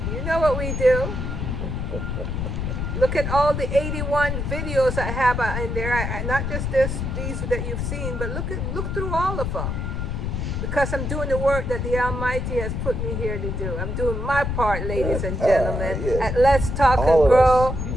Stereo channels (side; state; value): left; noise; rumble, 2 dB below the sound